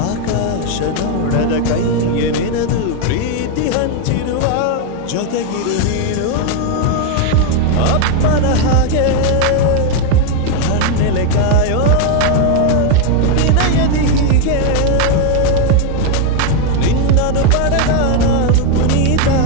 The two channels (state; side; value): different; both; correlation 0.01